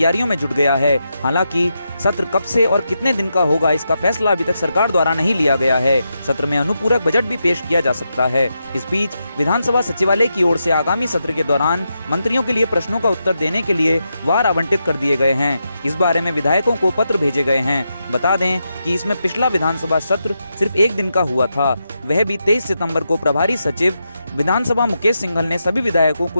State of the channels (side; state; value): both; inverted; correlation -0.85